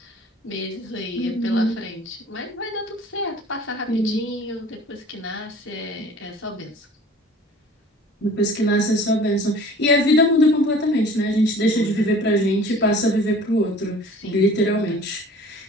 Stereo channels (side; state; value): both; normal; correlation 0.47